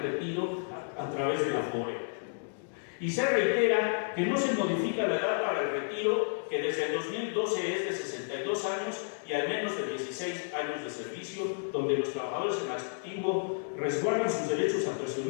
retiro a través de la FORE. Y se reitera que no se modifica la edad para el retiro, que desde el 2012 es de 62 años y al menos de 16 años de servicio, donde los trabajadores en activo resguardan sus derechos a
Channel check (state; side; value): silent; right; digital silence